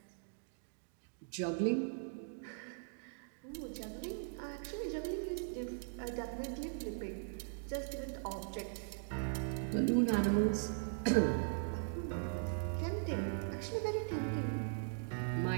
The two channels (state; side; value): silent; left; digital silence